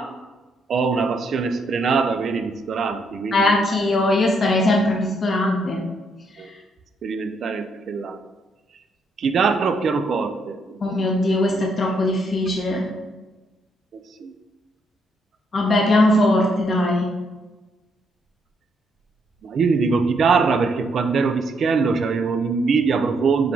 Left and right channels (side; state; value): both; normal; correlation 0.74